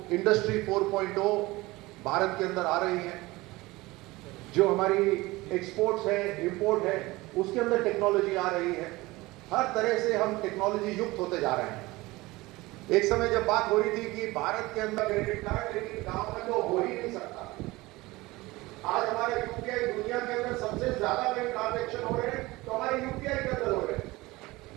इंडस्ट्री 4.0 भारत के अंदर आ रही है, जो हमारी एक्सपोर्ट्स है, इंपोर्ट है, उसके अंदर टेक्नोलॉजी आ रही है। हर तरह से हम टेक्नोलॉजी युक्त होते जा रहे हैं। एक समय जब बात हो रही थी कि भारत के अंदर क्रेडिट कार्ड, लेकिन गांव में तो हो ही नहीं सकता। आज हमारे यूपीआई दुनिया के अंदर सबसे ज्यादा बैंक ट्रांजेक्शन हो रहे हैं, तो हमारे यूपीआई के अंदर हो रहे हैं।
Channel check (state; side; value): quieter; left; 20.7 dB